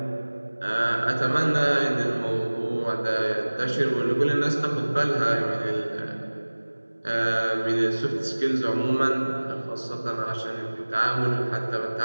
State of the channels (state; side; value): inverted; both; correlation -1.00